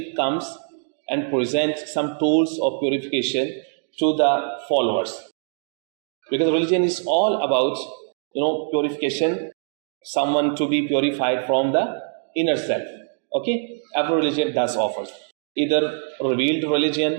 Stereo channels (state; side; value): silent; left; 63 dB below the other